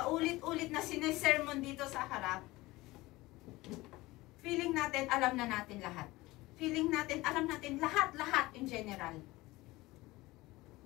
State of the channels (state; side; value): quieter; right; 19.9 dB